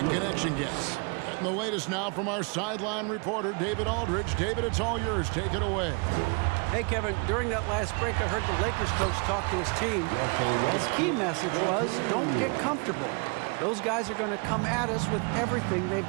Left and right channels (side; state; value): left; quieter; 32.9 dB